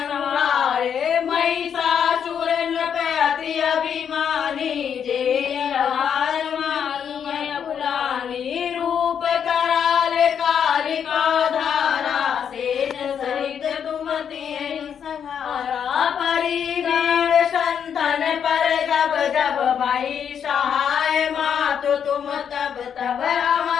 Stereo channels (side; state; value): right; quieter; 8.0 dB